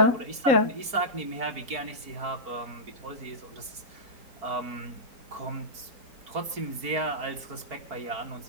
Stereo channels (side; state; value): left; late; 4.5 ms